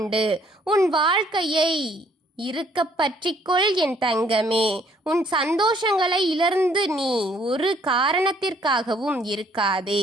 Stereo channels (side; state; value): both; normal; correlation 0.63